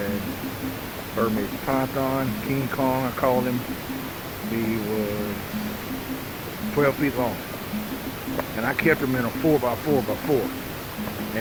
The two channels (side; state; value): both; identical; correlation 1.00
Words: Burmese python, King Kong, I called him. He was 12 feet long. And I kept him in a 4x4x4.